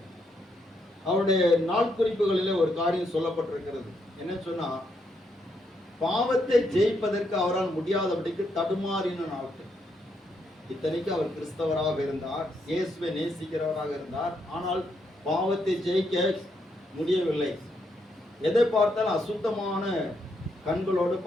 அவருடைய நாள் குறிப்புகளிலே ஒரு காரியம் சொல்லப்பட்டிருக்கிறது. என்ன சொன்னா, பாவத்தை ஜெயிப்பதற்கு அவரால் முடியாதபடிக்கு தடுமாறின நாட்கள். இத்தனைக்கு அவர் கிறிஸ்தவராக இருந்தார், இயேசுவை நேசிக்கிறவராக இருந்தார். ஆனால் பாவத்தை ஜெயிக்க முடியவில்லை. எதை பார்த்தால் அசுத்தமான கண்களோடு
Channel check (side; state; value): both; normal; correlation 0.77